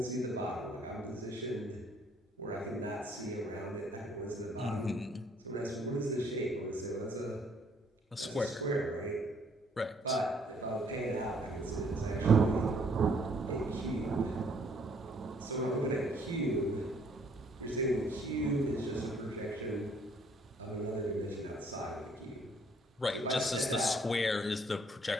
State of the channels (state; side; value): normal; both; correlation 0.63